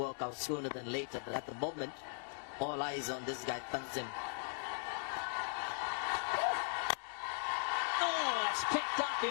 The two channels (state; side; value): silent; right; digital silence